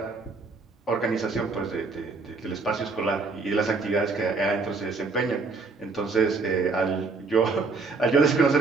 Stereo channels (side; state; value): left; quieter; 4.1 dB